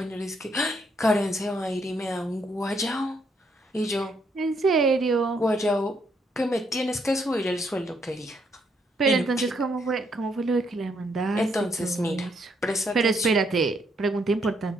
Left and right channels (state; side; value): normal; both; correlation 0.73